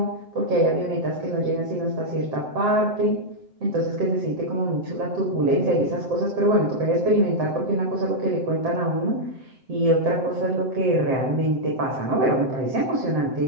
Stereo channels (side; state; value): left; late; 7.7 ms